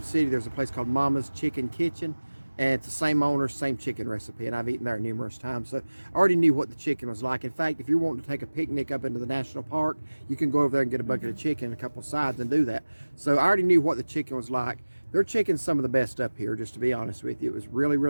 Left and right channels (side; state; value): both; inverted; correlation -1.00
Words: City. There's a place called Mama's Chicken Kitchen, and it's the same owner, same chicken recipe, and I've eaten there numerous times. So I already knew what the chicken was like. In fact, if you're wanting to take a picnic up into the national park, you can go over there and get a bucket of chicken and a couple of sides and do that. So I already knew what the chicken was like. Their chicken's some of the best up here, just to be honest with you. It was really,